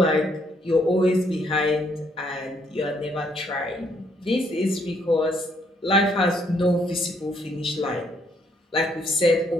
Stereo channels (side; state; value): both; normal; correlation 0.70